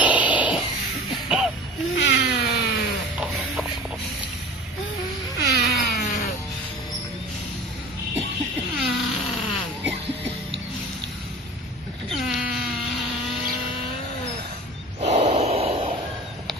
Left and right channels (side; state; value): both; normal; correlation 0.39